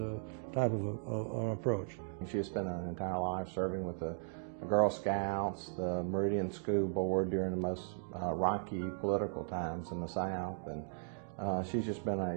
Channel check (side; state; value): left; silent; digital silence